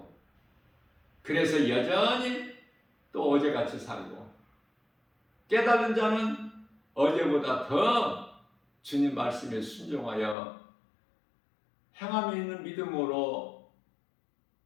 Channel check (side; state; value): right; drops out; at 10.4 s